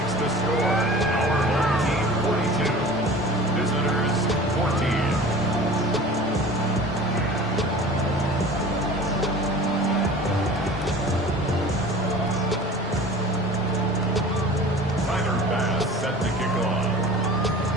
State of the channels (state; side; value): normal; both; correlation 0.40